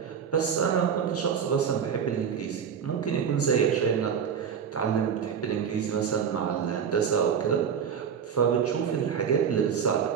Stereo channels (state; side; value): quieter; left; 7.4 dB